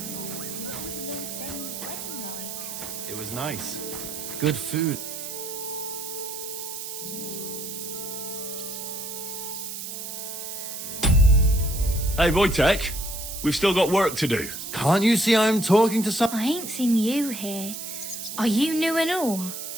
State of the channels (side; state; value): right; noise; hiss, 7 dB below the sound